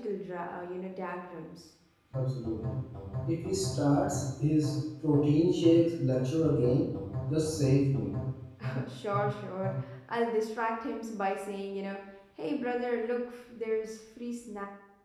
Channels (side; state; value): both; identical; correlation 1.00